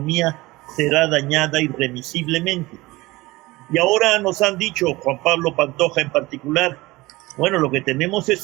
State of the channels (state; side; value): quieter; left; 20.6 dB